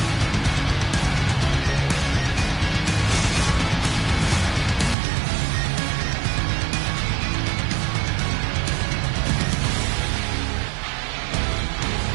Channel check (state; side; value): drops out; left; at 5.0 s